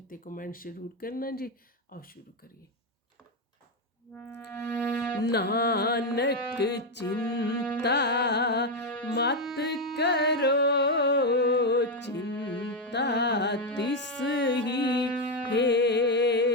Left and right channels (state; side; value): normal; both; correlation 0.05